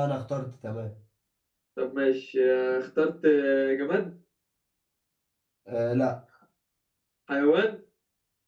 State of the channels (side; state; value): both; identical; correlation 1.00